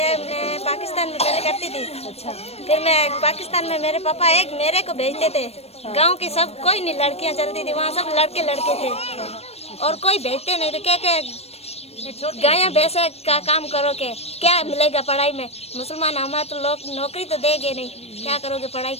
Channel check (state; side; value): late; right; 0.30 ms